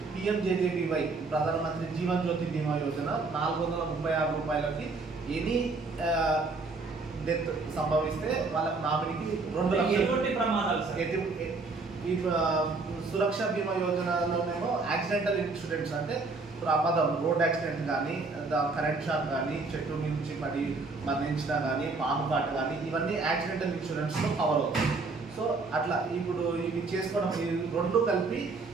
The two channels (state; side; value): quieter; left; 3.9 dB